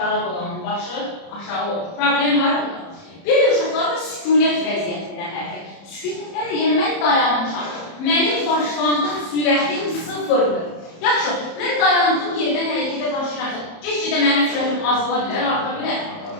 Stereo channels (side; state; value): right; late; 30 ms